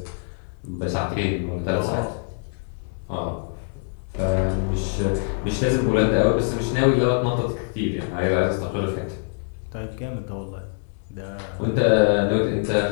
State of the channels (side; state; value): right; silent; 62 dB below the other